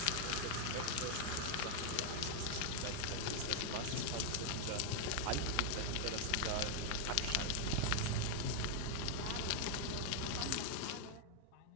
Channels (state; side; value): different; both; correlation 0.00